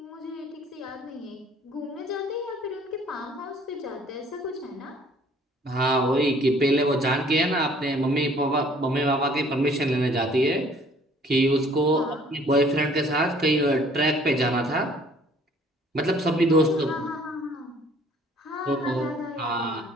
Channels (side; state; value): both; normal; correlation 0.57